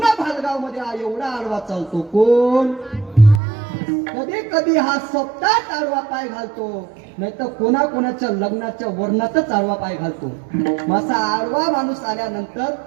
भालगाव मध्ये हा एवढा आडवा चालतो. कोण? कधी कधी हा सप्ताहात आडवा पाय घालतो, नाही तर कोणाच्या लग्नाच्या वर्णातच आडवा पाय घालतो. असा आडवा माणूस आल्यानंतर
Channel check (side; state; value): left; drops out; at 3.4 s